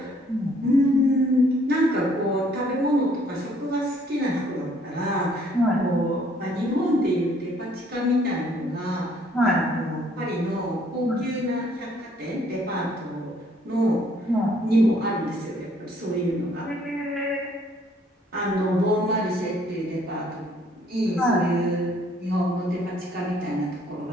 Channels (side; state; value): both; normal; correlation 0.63